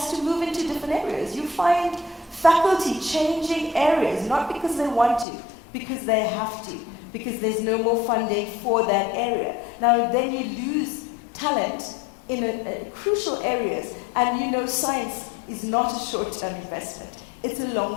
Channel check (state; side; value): drops out; right; at 5.2 s